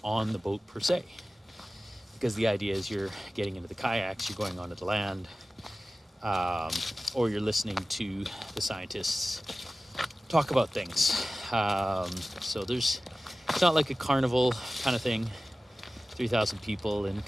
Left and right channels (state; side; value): normal; both; correlation 0.96